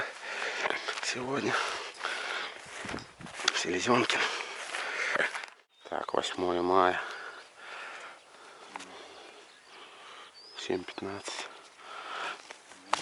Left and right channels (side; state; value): both; identical; correlation 1.00